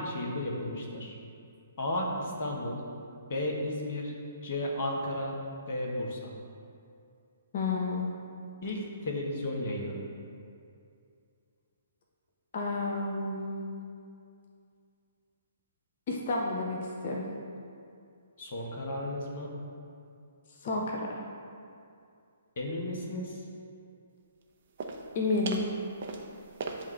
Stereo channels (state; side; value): inverted; both; correlation -0.49